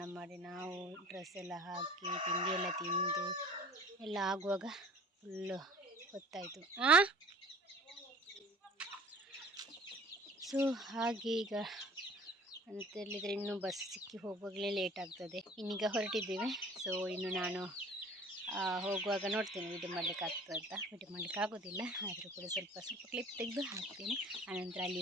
ಮಾಡಿ ನಾವು ಡ್ರೆಸ್ ಎಲ್ಲ ಹಾಕಿ ತಿಂಡಿ ಎಲ್ಲ ತಿಂದು ಎಲ್ಲ ಆಗುವಾಗ ಫುಲ್ಲು ಹೊತ್ತಾಯಿತು. ಸೊ ಹಾಗೆ ಈಗ ಅಂತೇಳಿದರೆ ಇನ್ನೂ ಬಸ್ ಸಿಕ್ಕಿ ಹೋಗುವಾಗಲೇ ಲೇಟ್ ಆಗ್ತದೆ. ಇನ್ನೀಗ ಹೊರಟಿದ್ದೇವೆ. ಸೊ ಇನ್ನು ನಾನು ಹೋಗುವಾಗ ನೋಡ್ತೇನೆ ವಿಡಿಯೋ ಮಾಡಲಿಕ್ಕೆ ಆಗ್ತದೆ ಅಂತ. ವಿಡಿಯೋ ಮಾಡಲಿಕ್ಕೆ ಆಗೋದಿಲ್ಲ, ಆದರೂ ಕೂಡ ಸ್ವಲ್ಪ ಕ್ಲಿಪ್ ತೆಗೆದು ಹಾಕ್ತೇನೆ. ಆನಂತರ ಅಲ್ಲಿ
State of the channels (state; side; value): normal; both; correlation 0.47